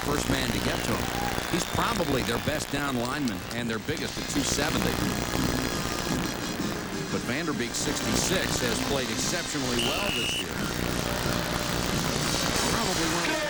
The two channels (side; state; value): both; identical; correlation 1.00